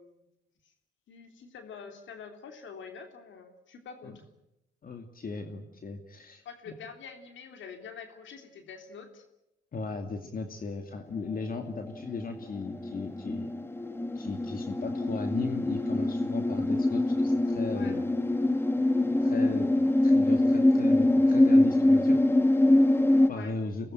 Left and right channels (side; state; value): both; normal; correlation 0.96